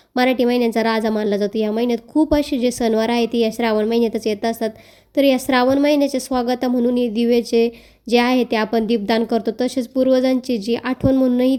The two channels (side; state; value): both; identical; correlation 1.00